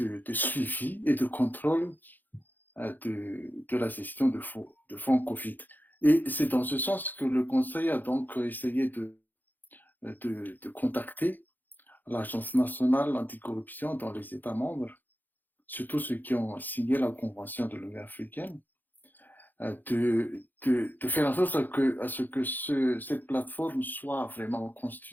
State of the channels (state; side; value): late; right; 0.086 ms